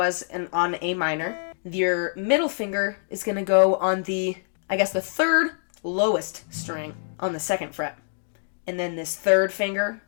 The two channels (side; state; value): right; silent; digital silence